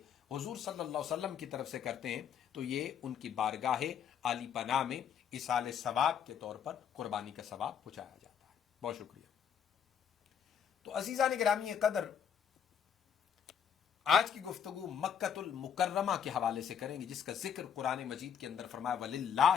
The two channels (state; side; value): quieter; right; 8.1 dB